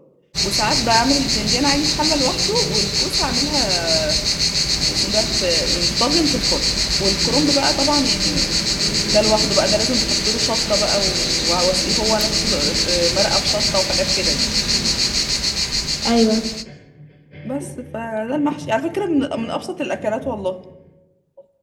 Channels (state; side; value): identical; both; correlation 1.00